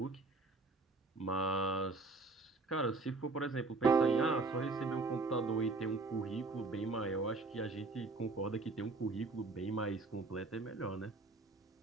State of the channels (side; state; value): left; quieter; 3.6 dB